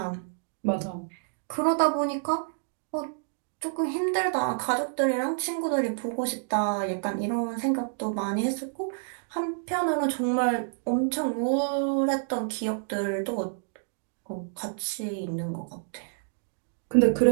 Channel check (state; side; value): silent; left; digital silence